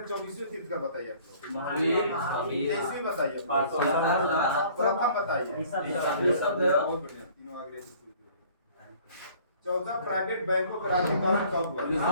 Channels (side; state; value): both; inverted; correlation -0.53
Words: 24वें तीर्थंकर बताइए आप लोग। 23वें बताइए, प्रथम बताइए। बहुत बढ़िया, तीनों आगे 14 प्राइवेट बैंकों का राज्यकरण कब हुआ?